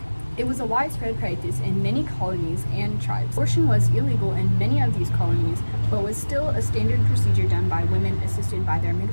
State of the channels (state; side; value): inverted; both; correlation -1.00